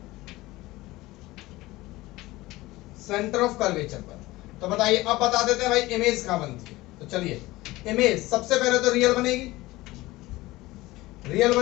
सेंटर ऑफ कर्वेचर पर। तो बताइए, अब बता देते हैं भाई इमेज कहां बनती है। तो चलिए, इमेज सबसे पहले तो रियल बनेगी, रियल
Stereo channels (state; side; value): quieter; right; 19.0 dB